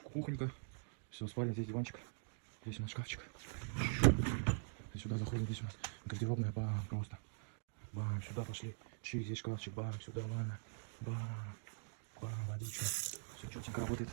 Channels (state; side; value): silent; left; digital silence